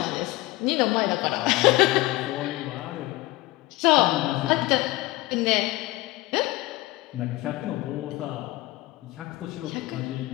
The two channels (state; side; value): quieter; right; 19.2 dB